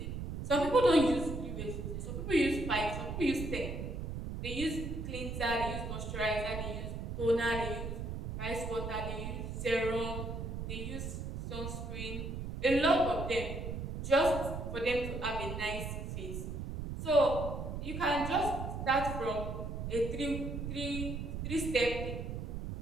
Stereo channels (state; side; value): noise; right; rumble, 5 dB below the sound